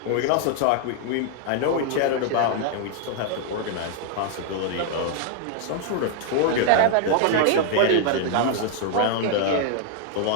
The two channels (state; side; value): different; both; correlation 0.00